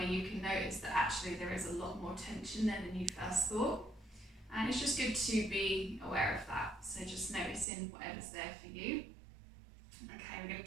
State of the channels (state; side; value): drops out; left; at 7.7 s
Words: you can notice that actually there is a lot more tension there than you first thought. And it's just good to be aware of that. So just noticing whatever's there for you. Okay, we're going